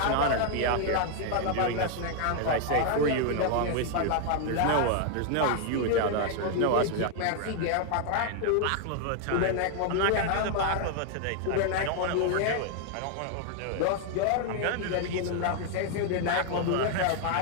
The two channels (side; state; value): both; different; correlation 0.00